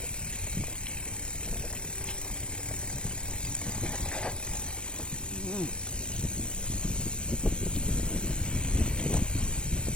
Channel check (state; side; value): late; right; 0.056 ms